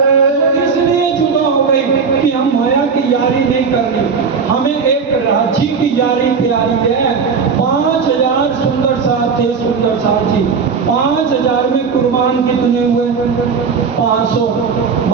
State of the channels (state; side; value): quieter; left; 5.6 dB